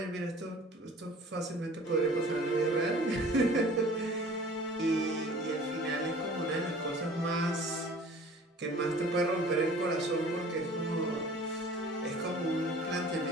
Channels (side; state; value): both; normal; correlation 0.46